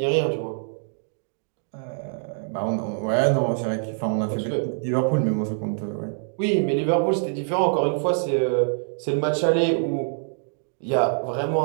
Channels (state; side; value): silent; left; digital silence